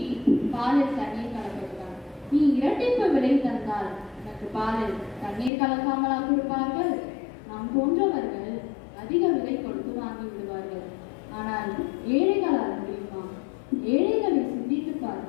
பாலில் தண்ணீர் கலப்பதுதான். நீ இரட்டிப்பு விலை தந்தால் எனக்கு பாலில் தண்ணீர் கலக்காமலா கொடுப்பார்கள்? நாம் போன்றவர்கள் அதிக விலை கொடுத்து வாங்கி விடுவார்கள். ஆனால் ஏழைகளால் முடியுமா? ஏழைகளை சிந்தித்து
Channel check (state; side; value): drops out; right; at 5.5 s